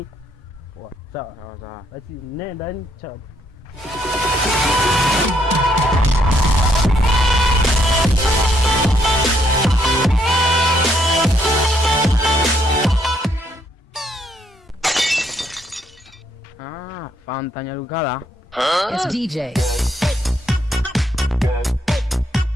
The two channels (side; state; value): both; normal; correlation 0.72